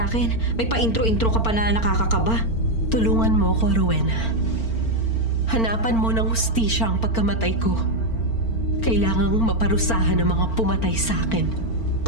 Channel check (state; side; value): late; right; 4.4 ms